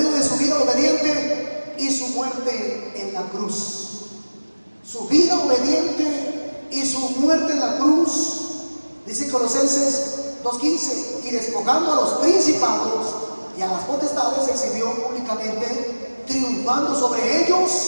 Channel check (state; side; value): inverted; both; correlation -1.00